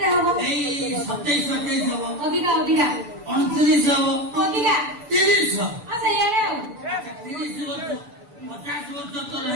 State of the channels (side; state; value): left; late; 6.9 ms